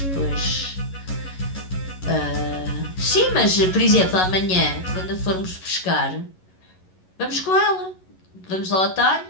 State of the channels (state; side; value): late; right; 11 ms